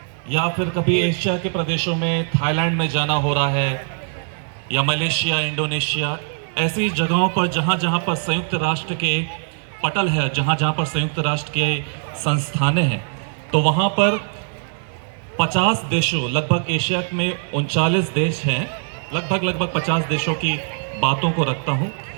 या फिर कभी एशिया के प्रदेशों में थाईलैंड में जाना हो रहा है, या मलेशिया, इंडोनेशिया, ऐसी जगहों पर जहाँ जहाँ पर संयुक्त राष्ट्र के पटल है, जहाँ जहाँ पर संयुक्त राष्ट्र के संस्थानें हैं, तो वहाँ पर 50 देशों, लगभग एशिया में 39 देश हैं, लगभग 50 देशों की बातों को रखता हूं।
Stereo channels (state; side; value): silent; left; 65 dB below the other